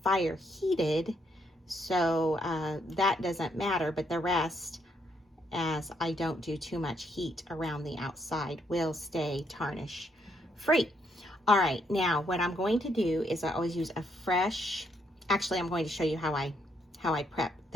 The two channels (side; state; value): both; normal; correlation 0.74